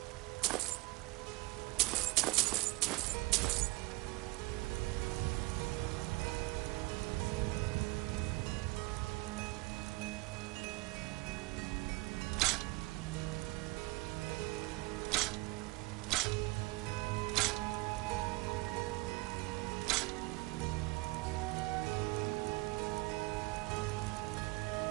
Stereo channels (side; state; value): left; quieter; 23.2 dB